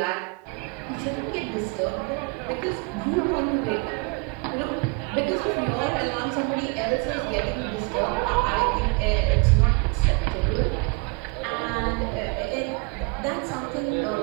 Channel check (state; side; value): quieter; left; 30.7 dB